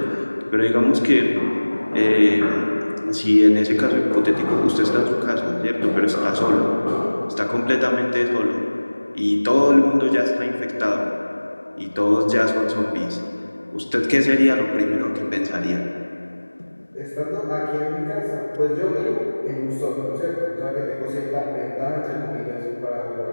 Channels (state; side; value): inverted; both; correlation -1.00